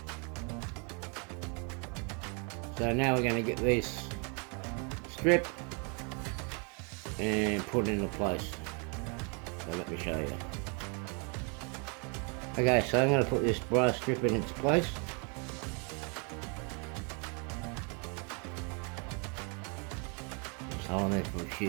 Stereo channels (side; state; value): left; quieter; 35.2 dB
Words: So now we're going to get this strip and put it into place. So let me show you. Okay, so I'm going to put this brass strip in its place. Just hold on there for a